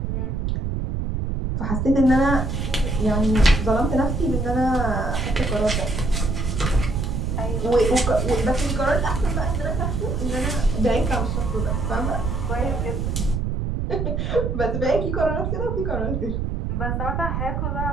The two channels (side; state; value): right; noise; rumble, 1 dB below the sound